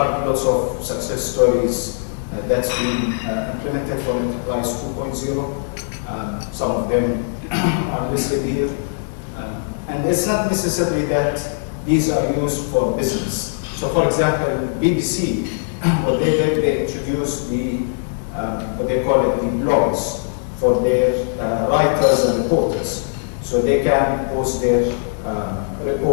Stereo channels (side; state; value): right; silent; digital silence